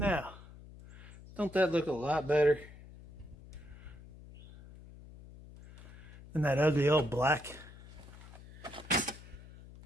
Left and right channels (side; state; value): left; noise; hum, 18 dB below the sound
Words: don't that look a lot better than that ugly old black?